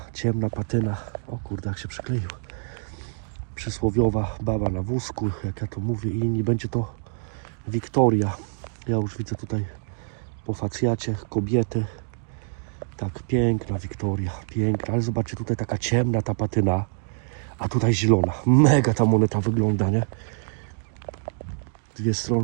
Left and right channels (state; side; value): silent; left; digital silence